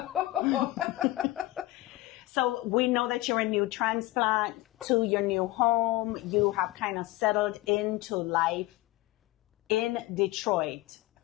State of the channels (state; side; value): quieter; right; 18.7 dB